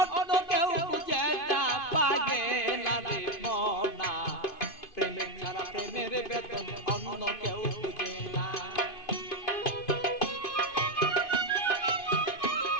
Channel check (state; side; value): late; right; 2.5 ms